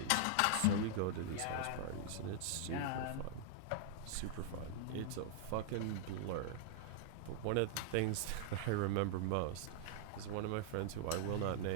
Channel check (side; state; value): both; different; correlation -0.01